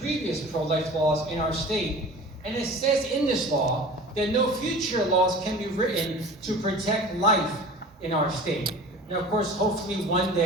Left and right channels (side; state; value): both; normal; correlation 0.40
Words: previous pro-life laws in our state. And it says in this law that no future laws can be written to protect life in our state. Now, of course, hopefully one